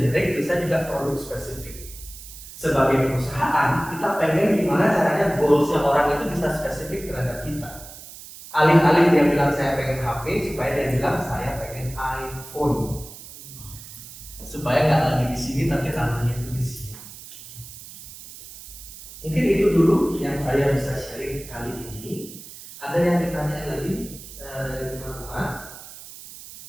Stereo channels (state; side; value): noise; right; hiss, 15 dB below the sound